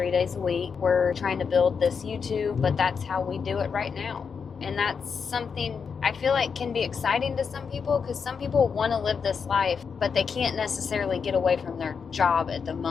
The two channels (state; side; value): quieter; right; 6.0 dB